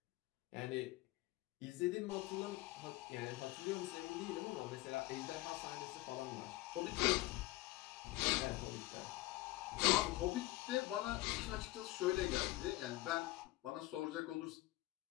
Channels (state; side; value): quieter; right; 18.4 dB